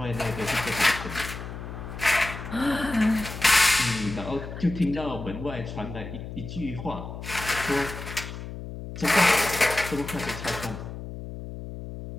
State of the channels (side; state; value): left; noise; hum, 9 dB below the sound